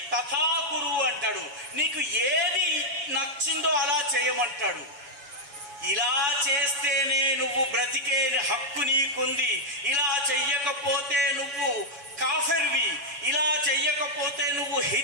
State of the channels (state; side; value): late; left; 7.1 ms